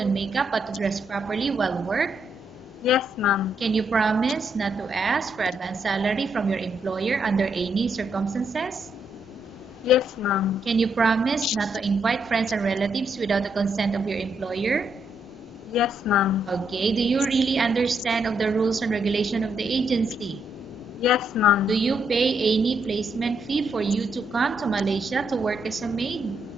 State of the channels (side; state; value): both; normal; correlation 0.77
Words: makeup but to dress properly while work? Yes, ma'am. Can you promise not to ask for advance salary from your employer under any circumstances? Yes, ma'am. Can you promise not to invite friends and relatives without the consent of your employer? Yes, ma'am. Okay, do you really understand of the rules and regulation of the agency? Yes, ma'am. Do you pay any placement fee for you to come to Malaysia to work as a maid?